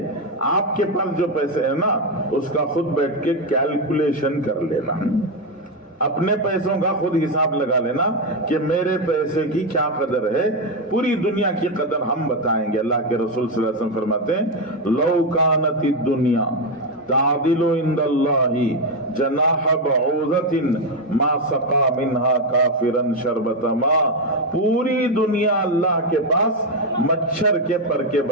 آپ کے پاس جو پیسے ہیں نا اس کا خود بیٹھ کے کیلکولیشن کر لینا، اپنے پیسوں کا خود حساب لگا لینا کہ میرے پیسے کی کیا قدر ہے. پوری دنیا کی قدر ہم بتائیں گے. اللہ کے رسول صلی اللہ علیہ وسلم فرماتے ہیں لو کانت الدنیا تعدل عند اللہ جناح بعوضۃ ما سقا منها کافرا شربۃ ماء. پوری دنیا اللہ کے پاس مچھر کے پر کے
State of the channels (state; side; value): normal; both; correlation 0.07